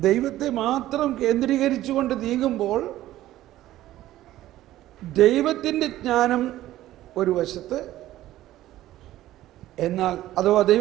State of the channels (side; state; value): left; quieter; 14.5 dB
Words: ദൈവത്തെ മാത്രം കേന്ദ്രീകരിച്ചുകൊണ്ട് നീങ്ങുമ്പോൾ ദൈവത്തിൻ്റെ ജ്ഞാനം ഒരു വശത്ത്, എന്നാൽ അഥവാ